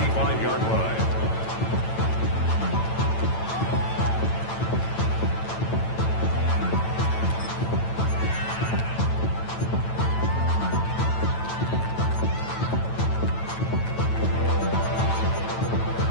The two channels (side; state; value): right; late; 9.0 ms